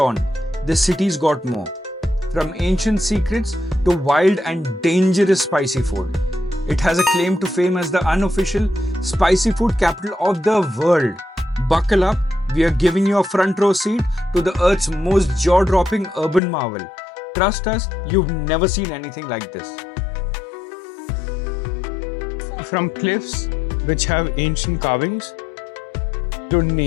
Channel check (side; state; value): right; drops out; at 16.4 s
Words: this city's got more. From ancient secrets to wild and dangerous spicy food. It has a claim to fame as the unofficial spicy food capital of the world. Buckle up, we are giving you a front row seat to the Earth's most jaw-dropping urban marvel. Trust us, you've never seen anything like this. From cliffs which have ancient carvings to